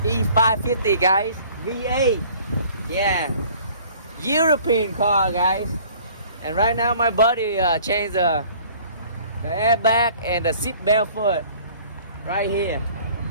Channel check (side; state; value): both; inverted; correlation -0.52